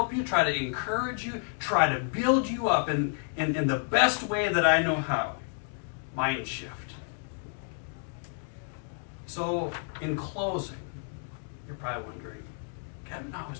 you, try to encourage you, try to build you up in the best way that I know how. Mind shift. So, in closing, you're probably wondering, Kevin always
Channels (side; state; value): right; silent; 58 dB below the other